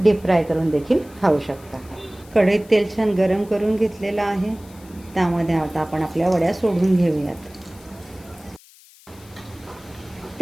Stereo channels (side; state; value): left; noise; hiss, 25 dB below the sound